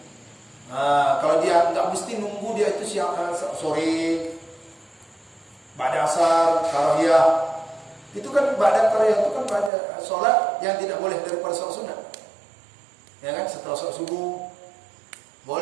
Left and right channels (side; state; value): left; drops out; at 9.7 s